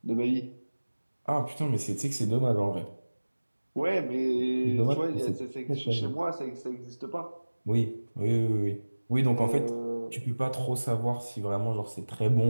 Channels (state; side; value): inverted; both; correlation -1.00